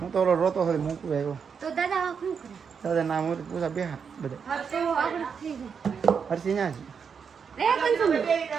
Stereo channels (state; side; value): quieter; left; 6.4 dB